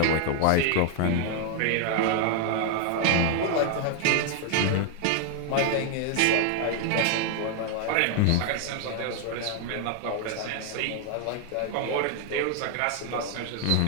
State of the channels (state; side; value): different; both; correlation 0.01